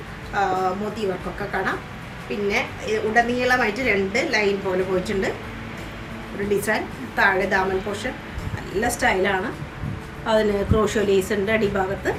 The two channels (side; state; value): both; identical; correlation 1.00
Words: മോത്തി വർക്കൊക്കെ കാണാം. പിന്നെ ഉടനീളമായിട്ട് 2 ലൈൻ പോലെ പോയിട്ടുണ്ട് ഒരു ഡിസൈൻ. താഴെ ദാമൻ പോർഷൻ നല്ല സ്റ്റൈലാണ്. അതിന് ക്രോഷോ ലേസ് ഉണ്ട് അടിഭാഗത്ത്.